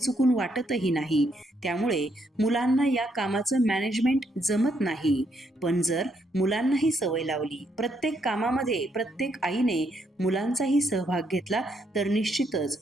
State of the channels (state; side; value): normal; both; correlation 0.75